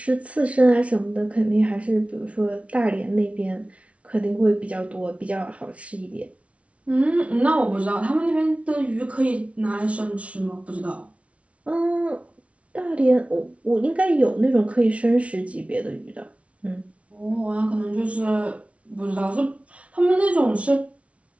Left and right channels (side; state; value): left; late; 0.063 ms